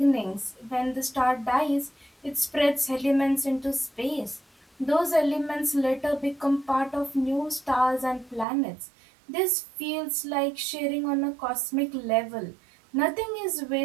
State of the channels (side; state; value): left; drops out; at 8.5 s